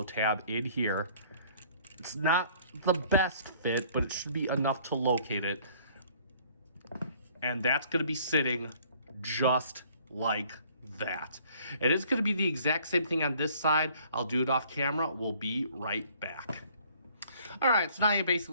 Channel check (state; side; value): inverted; both; correlation -0.57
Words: tab in here. It's not the best fit, but it should be enough to locate it. And that's going to be sitting just like that. It is going to be the exact same thing on this side. I'll do it off camera. We'll be right back. All right, so now you